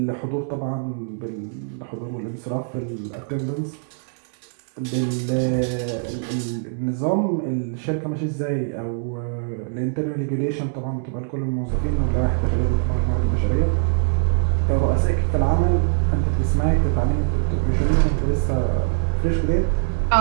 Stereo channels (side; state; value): left; silent; digital silence